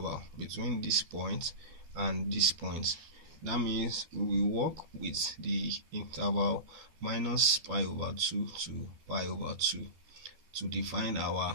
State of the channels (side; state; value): left; late; 13 ms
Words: between this point and this point. That means we will work with the interval minus pi over 2 to pi over 2 to define our